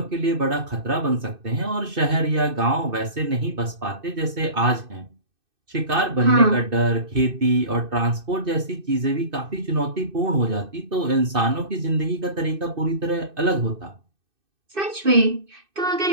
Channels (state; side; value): late; left; 2.6 ms